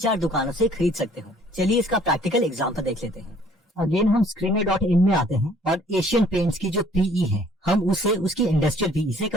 दुकानों से खरीद सकते हो। चलिए इसका प्रैक्टिकल एग्जांपल देख लेते हैं। अगेन हम screener.in में आते हैं और एशियन पेंट्स की जो PE है हम उसे उसकी इंडस्ट्रियल PE से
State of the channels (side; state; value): both; normal; correlation 0.57